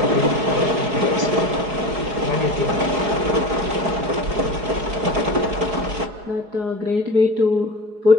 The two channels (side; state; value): left; late; 4.8 ms